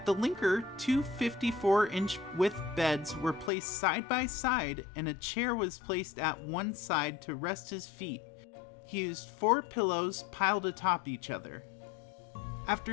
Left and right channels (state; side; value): drops out; right; at 3.5 s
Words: the Linker, two 54-inch width beds were placed side by side and a chair was placed at one side to rest his feet. He used 4 pillows piled atop each other.